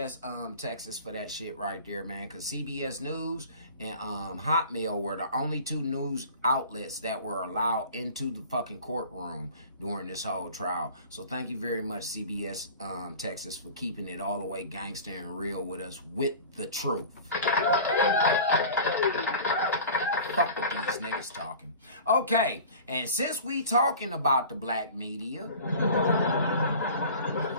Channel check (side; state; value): both; inverted; correlation -0.40